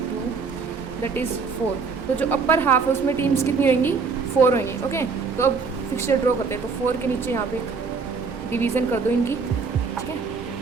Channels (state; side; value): quieter; left; 5.0 dB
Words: that is 4. तो जो अपर हाफ है उसमें टीम्स कितनी होंगी 4 होंगी. ओके. तो अब फिक्सचर ड्रॉ करते हैं. तो 4 के नीचे यहाँ पे डिवीज़न कर दो इनकी, ठीक है.